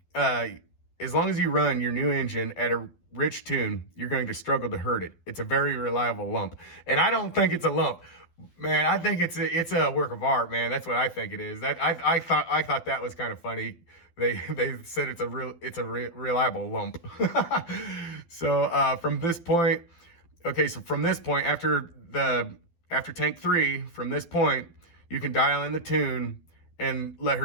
run your new engine at a rich tune, you're going to struggle to hurt it. It's a very reliable lump. And I don't think it's a lump, man. I think it's a work of art, man. That's what I think it is. I thought that was kind of funny. They said it's a reliable lump. So from this point, after tank 3, from this point, you can dial in the tune and let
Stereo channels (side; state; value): right; late; 12 ms